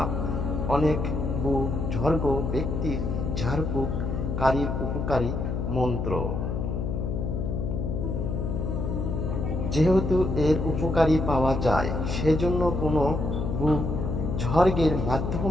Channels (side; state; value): left; noise; hum, 2 dB below the sound